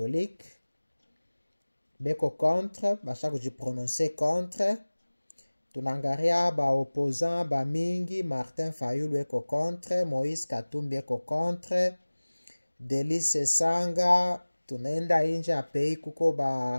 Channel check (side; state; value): both; inverted; correlation -1.00